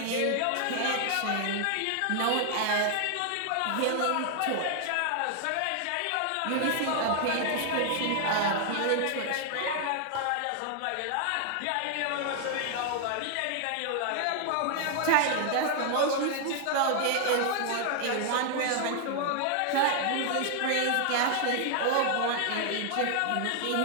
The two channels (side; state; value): both; different; correlation 0.00